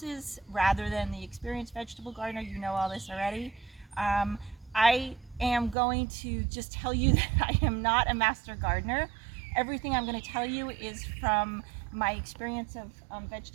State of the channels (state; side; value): drops out; left; at 5.8 s